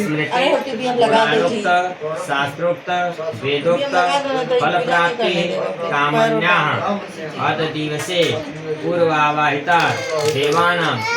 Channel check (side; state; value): both; identical; correlation 1.00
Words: पुराणोक्त शास्त्रोक्त वेदोक्त फल प्राप्ति कामन्याः अत दिवसे पूर्वावाहिता देवानां